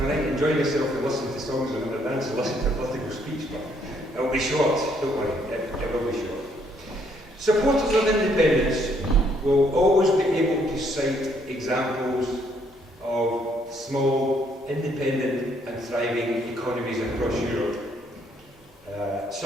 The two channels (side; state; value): both; normal; correlation 0.69